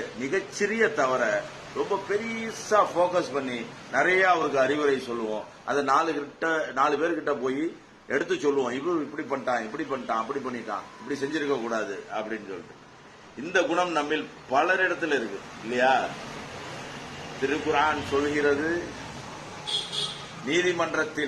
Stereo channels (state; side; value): identical; both; correlation 1.00